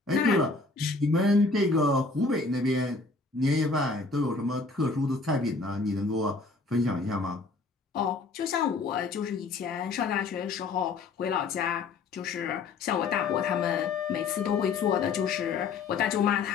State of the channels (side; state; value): right; quieter; 4.0 dB